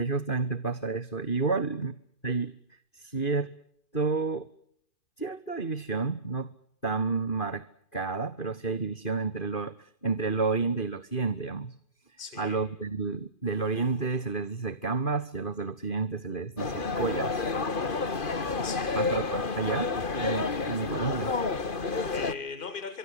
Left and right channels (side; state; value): right; late; 2.5 ms